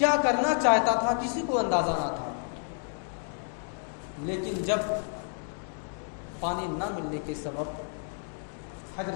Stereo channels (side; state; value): right; silent; 58 dB below the other